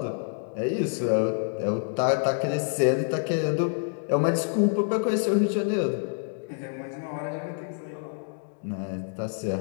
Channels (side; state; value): right; silent; digital silence